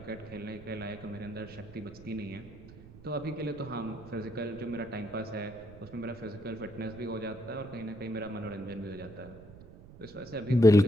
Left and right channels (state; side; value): noise; right; rumble, 18 dB below the sound